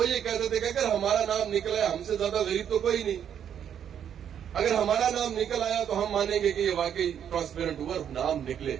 یہ کہتے تھے کہ اگر ہمارا نام نکلا ہے, ہم سے زیادہ غریب تو کوئی نہیں, اگر ہمارا نام نکل آیا تو ہم مانیں گے کہ یہ واقعی ٹرانسپیرنٹ ہوا. نام نکلے,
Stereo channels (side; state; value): left; quieter; 8.9 dB